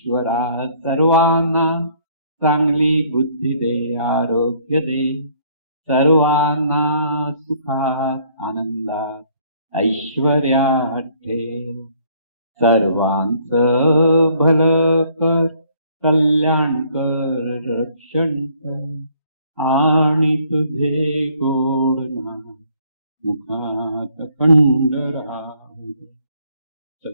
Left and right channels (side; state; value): both; inverted; correlation -0.62